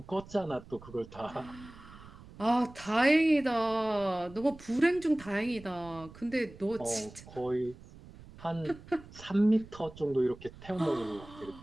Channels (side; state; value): right; noise; rumble, 19 dB below the sound